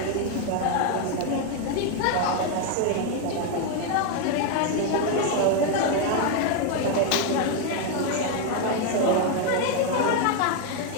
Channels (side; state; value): both; different; correlation 0.01